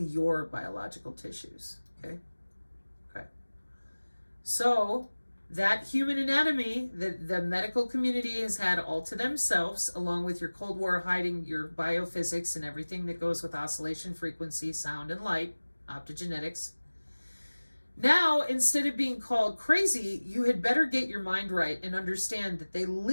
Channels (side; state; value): both; inverted; correlation -1.00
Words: your biological tissues. Okay? Okay. So, that human anatomy that the medical community has had all to themselves, along with your Cold War hiding your biophysics and everything that goes with oscillation frequency, sound, and light, optogenetics. Now, instead of being called crazy, you had better get your mind right and understand that they